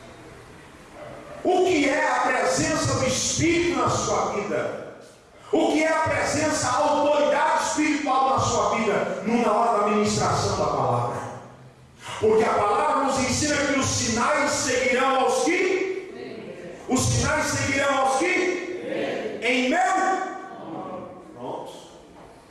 O que é a presença do Espírito na sua vida? O que é a presença, a autoridade espiritual na sua vida? Na hora da ministração da palavra. Porque a palavra nos ensina que os sinais seguirão aos que? Os sinais seguirão aos que? Em meu? Pronto.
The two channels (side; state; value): both; identical; correlation 1.00